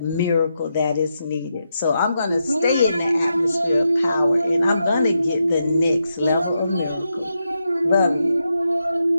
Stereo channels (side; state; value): both; inverted; correlation -0.84